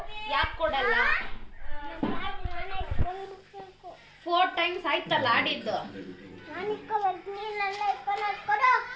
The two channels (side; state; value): both; identical; correlation 1.00